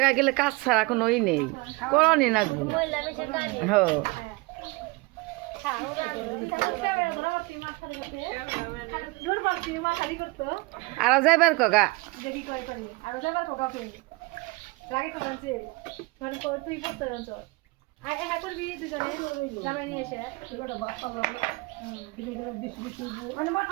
গেলে কাজ ছাড়া কোনো ই নেই, করণই লাগবে। হ্যাঁ, আরো যাইবার কগা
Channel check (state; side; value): quieter; left; 24.8 dB